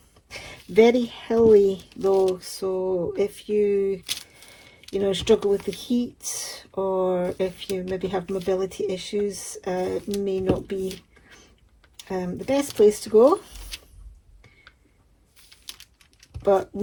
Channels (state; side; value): identical; both; correlation 1.00